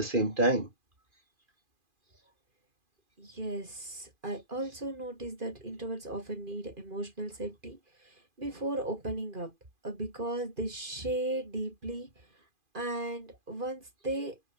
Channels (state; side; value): late; left; 2.5 ms